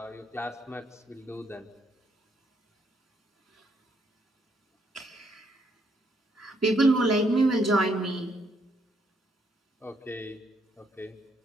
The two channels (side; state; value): both; normal; correlation 0.73